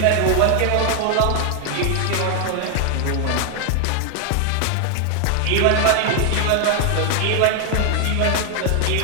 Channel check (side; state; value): both; different; correlation 0.00